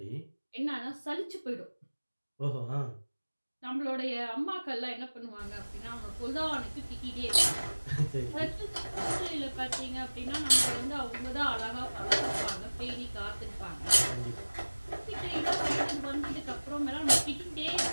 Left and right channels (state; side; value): inverted; both; correlation -1.00